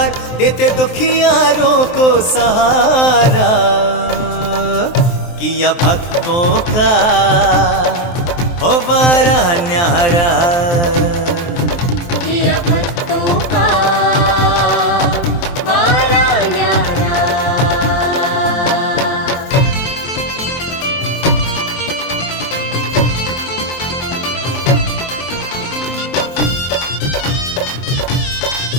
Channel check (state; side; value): late; right; 23 ms